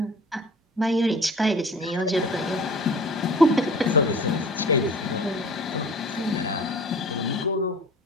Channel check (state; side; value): normal; both; correlation 0.44